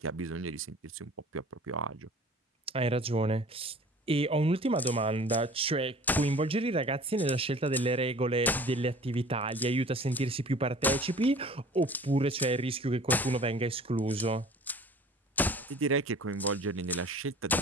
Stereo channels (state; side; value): normal; both; correlation 0.45